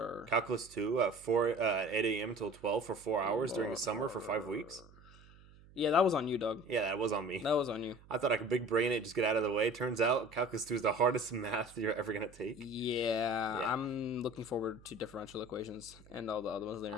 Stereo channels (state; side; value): noise; right; hum, 23 dB below the sound